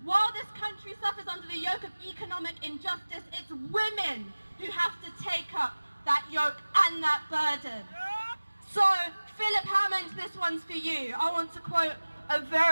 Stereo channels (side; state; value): both; inverted; correlation -1.00